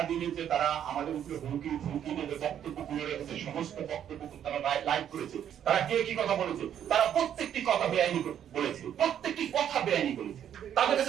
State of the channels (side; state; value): left; quieter; 9.7 dB